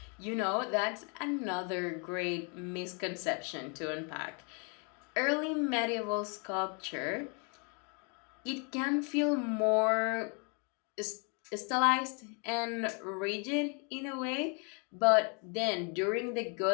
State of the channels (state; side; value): quieter; right; 35.9 dB